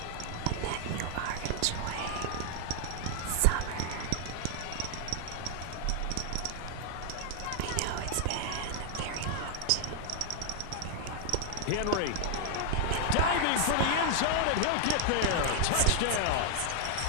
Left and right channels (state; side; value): different; both; correlation 0.00